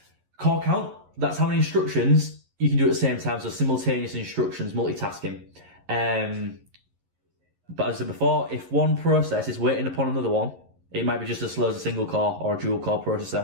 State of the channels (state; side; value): late; left; 11 ms